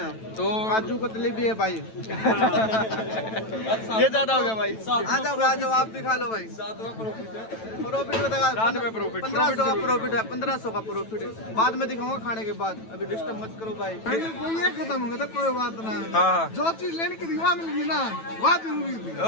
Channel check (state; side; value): late; right; 9.1 ms